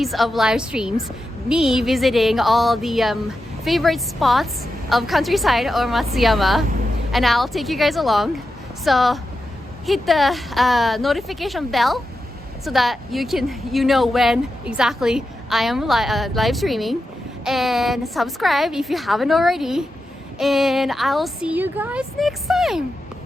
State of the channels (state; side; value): normal; both; correlation 0.89